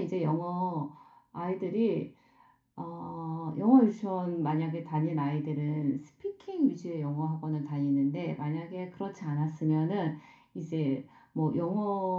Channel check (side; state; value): both; identical; correlation 1.00